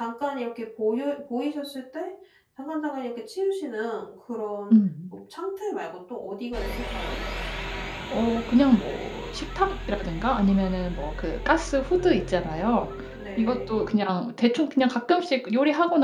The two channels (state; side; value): identical; both; correlation 1.00